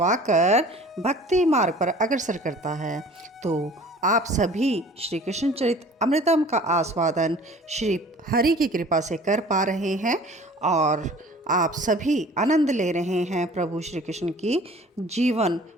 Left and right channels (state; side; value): normal; both; correlation 0.47